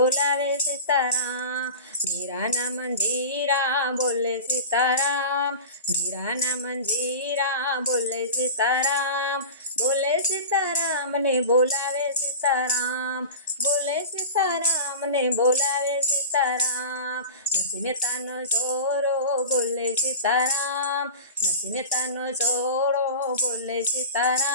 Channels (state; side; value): inverted; both; correlation -0.33